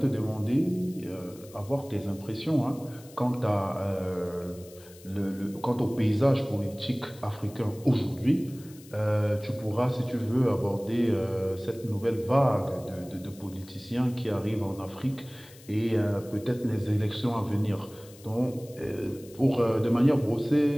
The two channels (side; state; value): left; noise; hiss, 22 dB below the sound